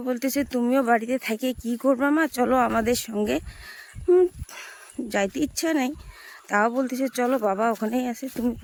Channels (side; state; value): both; identical; correlation 1.00